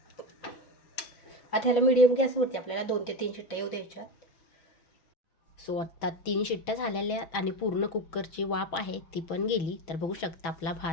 आता ह्याला मीडियम गॅसवरती आपल्याला 2 ते 3 शिट्ट्या येऊ द्यायच्यात. सो आत्ता 3 शिट्ट्या झालेल्या आणि पूर्ण कुकरची वाफ आहे ती पण गेली. तर बघू शकता आपला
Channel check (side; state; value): right; late; 6.1 ms